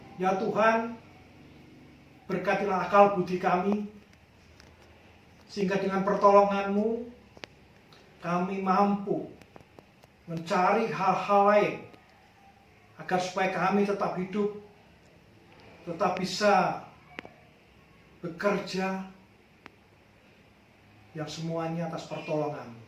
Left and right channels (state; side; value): identical; both; correlation 1.00